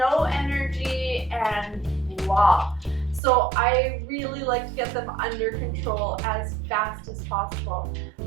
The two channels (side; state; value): left; drops out; at 3.2 s